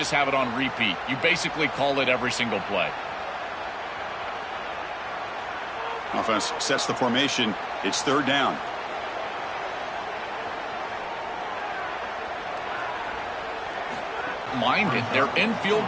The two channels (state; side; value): identical; both; correlation 1.00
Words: have it on repeat. You basically call it every single play. Offense sets the formation. It's 3rd down. Mind it, they're in field